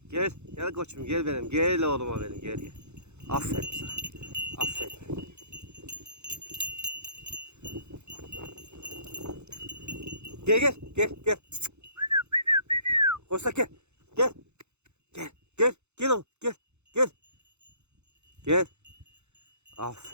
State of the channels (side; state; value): left; late; 0.82 ms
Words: Gel. Gel koçum gel benim. Gel oğluma benim. Gel gel. Aferin sana. Aferin. Gel gel. Gel gel. Koşsak gel. Gel. Gel. Gel. Gel oğlum. Gel. Gel. Gel.